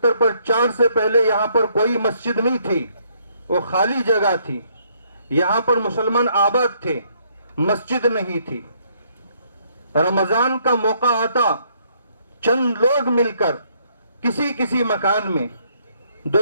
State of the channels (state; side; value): inverted; both; correlation -0.69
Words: پر 4 سے پہلے یہاں پر کوئی مسجد نہیں تھی، وہ خالی جگہ تھی، یہاں پر مسلمان آباد تھے، مسجد نہیں تھی۔ رمضان کا موقع آتا، چند لوگ مل کر کسی مکان میں